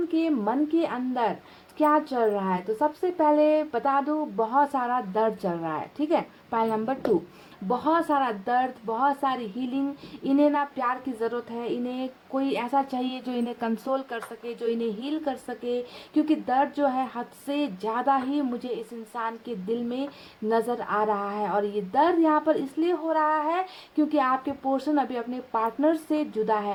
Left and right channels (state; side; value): identical; both; correlation 1.00